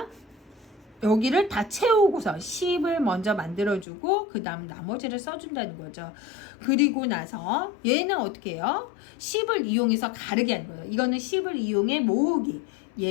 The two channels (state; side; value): drops out; right; at 3.9 s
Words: 여기를 다 채우고서 10을 먼저 만들어주고 그 다음 나머지를 써준다는 거죠. 그리고 나서 얘는 어떻게 해요? 10을 이용해서 가르기 하는 거예요. 이거는 10을 이용해 모으기.